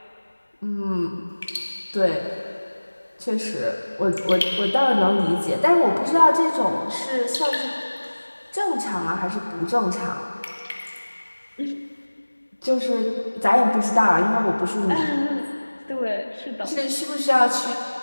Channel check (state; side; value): inverted; both; correlation -1.00